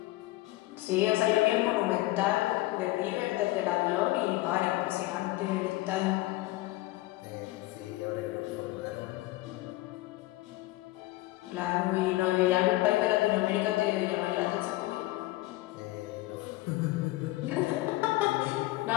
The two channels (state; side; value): quieter; right; 18.6 dB